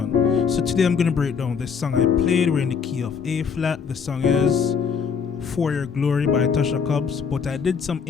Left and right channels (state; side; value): quieter; right; 6.3 dB